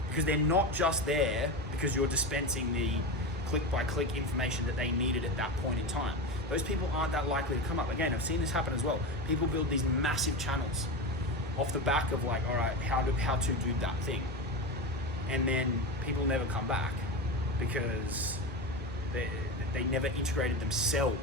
because they're not just there because you're dispensing the click by click information that they needed at that point in time. Those people aren't that likely to come up. Again, I've seen this happen as well. People build these massive channels, off the back of like, all right, how to do that thing. And then people never come back because they never integrated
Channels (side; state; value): both; normal; correlation 0.21